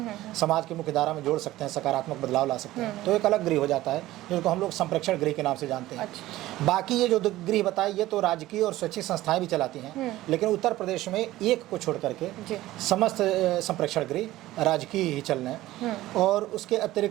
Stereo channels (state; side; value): quieter; left; 16.2 dB